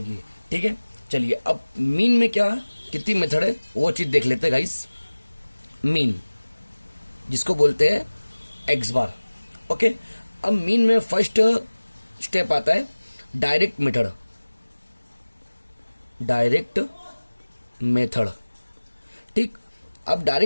ठीक है। चलिए अब मीन में क्या है, कितनी मेथड है वो चीज देख लेते हैं गाइस। मीन जिसको बोलते हैं एक्स बार, ओके। अब मीन में फर्स्ट स्टेप आता है डायरेक्ट मेथड, ठीक। अब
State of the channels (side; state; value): both; inverted; correlation -1.00